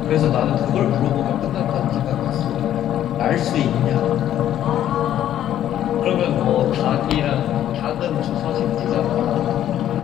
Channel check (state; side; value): quieter; right; 11.5 dB